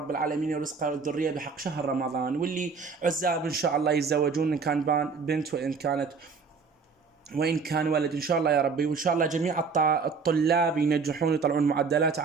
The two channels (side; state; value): left; quieter; 5.1 dB